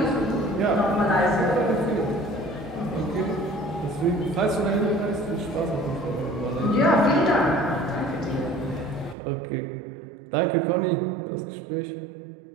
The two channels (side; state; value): left; drops out; at 9.2 s